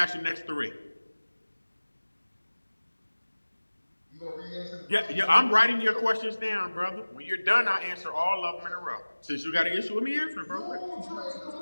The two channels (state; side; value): inverted; both; correlation -1.00